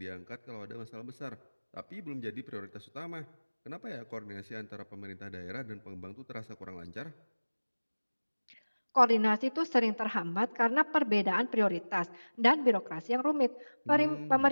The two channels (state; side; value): inverted; both; correlation -1.00